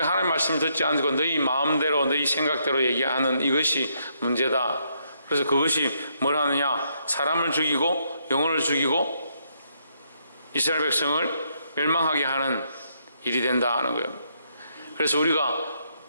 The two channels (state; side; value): inverted; both; correlation -0.75